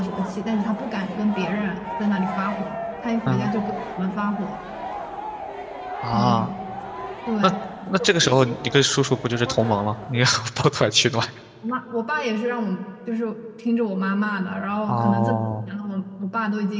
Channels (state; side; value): identical; both; correlation 1.00